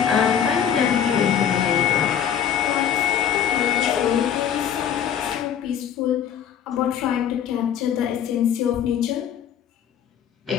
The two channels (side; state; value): right; quieter; 8.9 dB